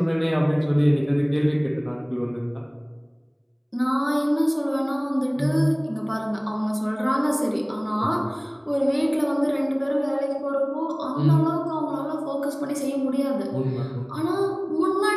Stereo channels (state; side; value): identical; both; correlation 1.00